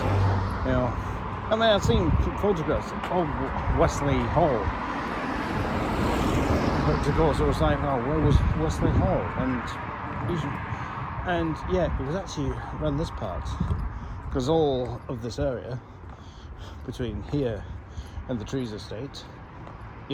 You know, I mean, I've seen photographs of Westleigh Hall, but of course it was like, oh, where was Westleigh Hall? And yeah, it was actually around this part, because all of this area between here and the Trees Estate,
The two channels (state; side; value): identical; both; correlation 1.00